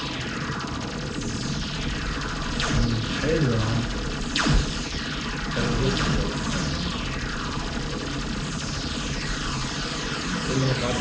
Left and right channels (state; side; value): identical; both; correlation 1.00